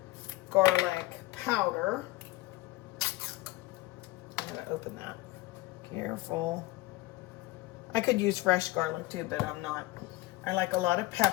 garlic powder. I'm gonna open that. Careful. I could use fresh garlic too, but I'm not. I like a lot of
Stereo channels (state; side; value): quieter; right; 19.1 dB